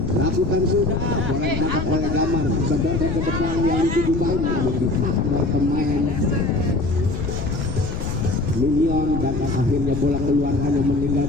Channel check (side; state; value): left; noise; rumble, 5 dB below the sound